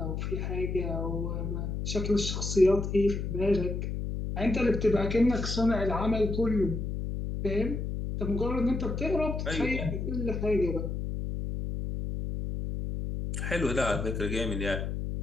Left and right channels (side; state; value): left; noise; hum, 3 dB below the sound